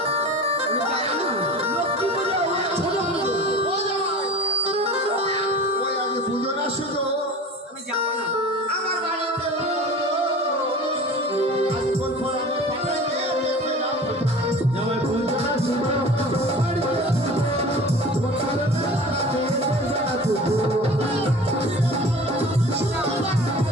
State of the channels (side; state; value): both; normal; correlation 0.39